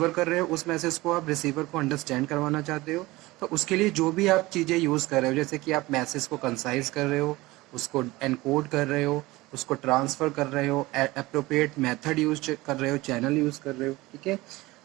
कर रहे हो उस message को आप रिसीवर को अंडरस्टैंड करवाना चाहते हो, तो उसके लिए जो भी आप चीज़ें यूज़ कर रहे हो, जैसे कि आप मैसेज को कंसाइज कर रहे हो, उसको एनकोड कर रहे हो, उसको ट्रांसफ़र कर रहे हो, अप्रोप्रिएट मेथड यूज कर रहे हो, चैनल यूज़ कर रहे हो, ठीक है।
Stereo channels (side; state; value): left; quieter; 20.1 dB